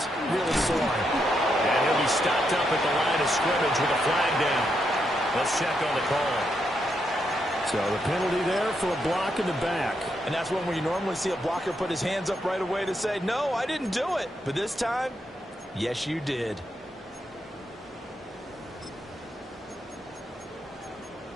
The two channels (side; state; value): both; normal; correlation 0.80